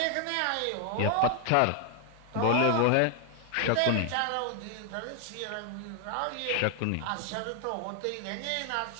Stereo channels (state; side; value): different; both; correlation 0.00